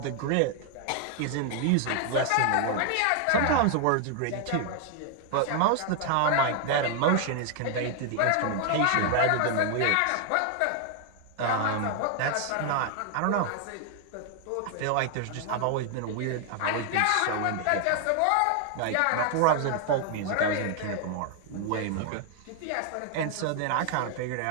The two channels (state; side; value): different; both; correlation 0.00